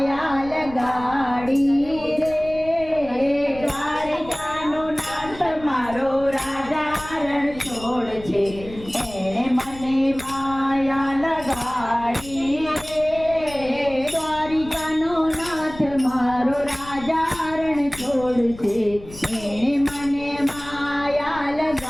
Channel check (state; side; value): noise; left; rumble, 16 dB below the sound